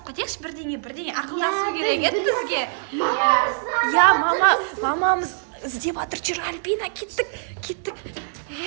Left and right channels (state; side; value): silent; left; digital silence